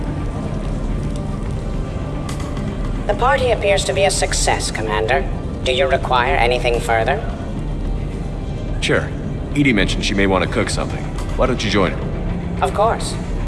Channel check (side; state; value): both; identical; correlation 1.00